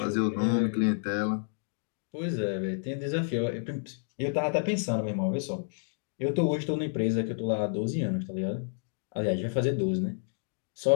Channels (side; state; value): right; silent; digital silence